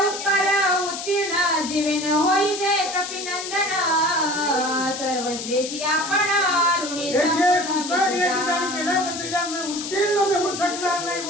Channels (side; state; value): left; noise; hiss, 7 dB below the sound